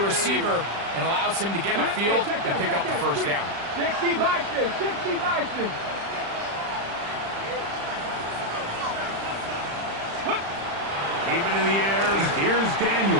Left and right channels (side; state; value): left; late; 35 ms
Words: and allows him to get upfield and pick up the first down. 60 Bison, 60 Bison. Keep it in the air. Here's